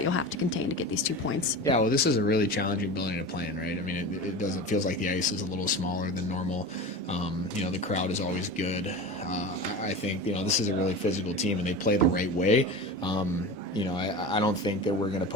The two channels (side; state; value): both; normal; correlation 0.30